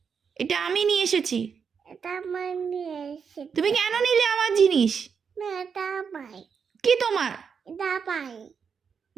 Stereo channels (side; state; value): left; quieter; 6.4 dB